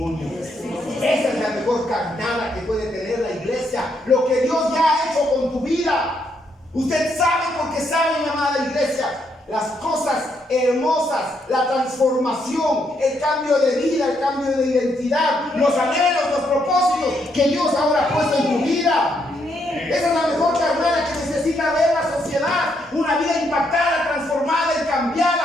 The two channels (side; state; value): both; normal; correlation 0.76